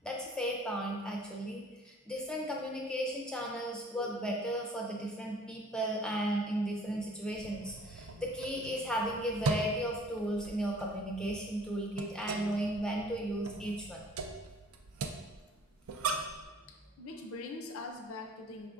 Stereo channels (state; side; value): normal; both; correlation 0.53